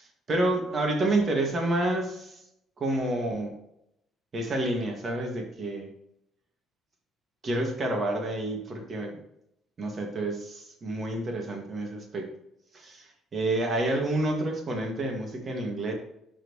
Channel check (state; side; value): normal; both; correlation 0.66